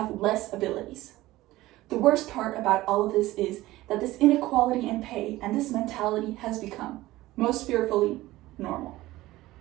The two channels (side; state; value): left; quieter; 17.3 dB